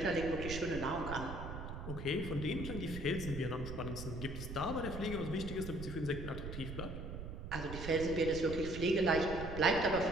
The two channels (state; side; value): noise; right; rumble, 7 dB below the sound